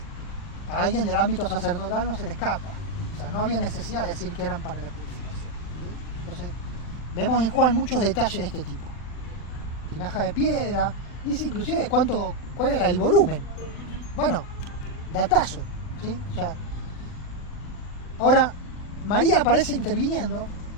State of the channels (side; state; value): right; late; 40 ms